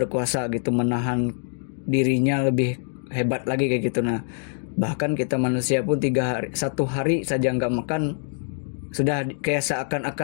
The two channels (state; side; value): silent; right; 59 dB below the other